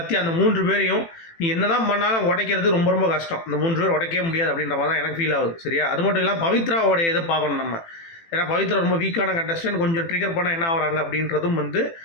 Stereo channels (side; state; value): right; late; 18 ms